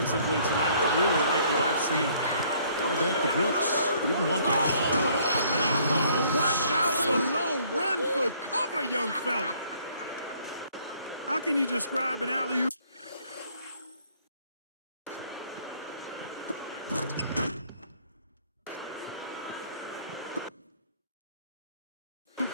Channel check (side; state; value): both; inverted; correlation -0.61